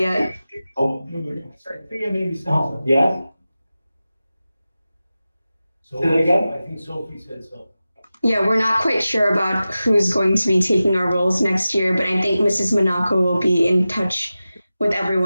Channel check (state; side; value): inverted; both; correlation -0.95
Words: yet. Oh, maybe so. Yes? So Say that again? I think Sophie said so. Yeah, we're not quite sure about who's going to be taking our roles next year, but I think Mrs. Monaco will be in touch with